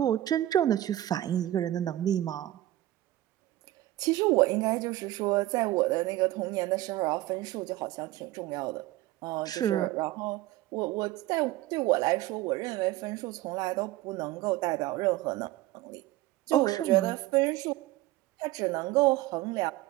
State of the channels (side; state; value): left; quieter; 15.5 dB